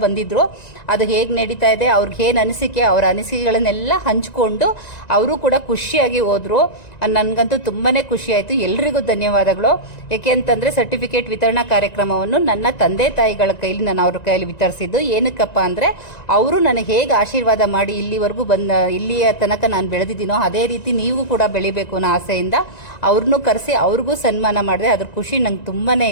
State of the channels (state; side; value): late; right; 1.9 ms